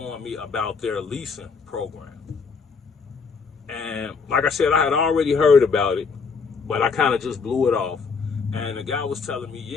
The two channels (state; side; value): quieter; right; 5.2 dB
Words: me about their leasing program. And like I said, I had already heard about it, but I kind of just blew it off. And the guy was telling me,